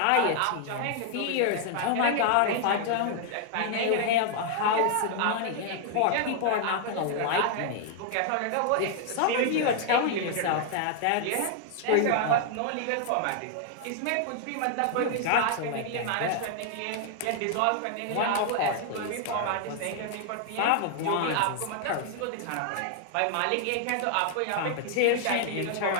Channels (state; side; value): different; both; correlation 0.00